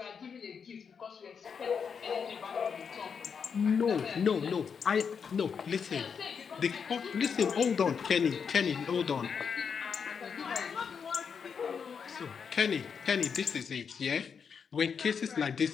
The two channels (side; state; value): right; quieter; 6.4 dB